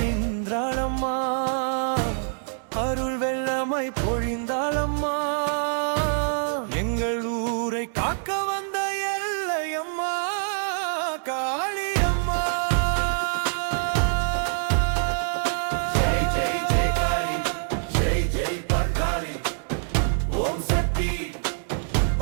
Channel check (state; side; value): silent; left; digital silence